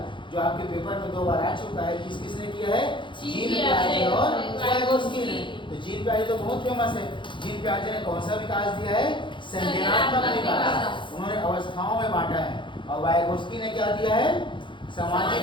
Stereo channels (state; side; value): late; right; 0.23 ms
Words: जो आपके पेपर में 2 बार आ चुका है। किस किसने किया है, जीन पियाजे और वाइगोत्स्की ने। तो जीन पियाजे तो बहुत फेमस है। जीन पियाजे ने कौन सा विकास दिया है, संज्ञानात्मक विकास, उन्होंने अवस्थाओं में बांटा है। और वाइगोत्स्की ने क्या दिया है, सामाजिक